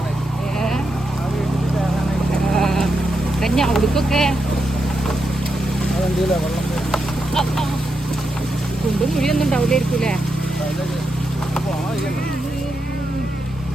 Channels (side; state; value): both; normal; correlation 0.85